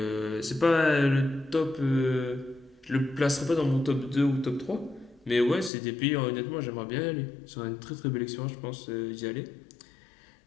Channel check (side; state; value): right; drops out; at 5.7 s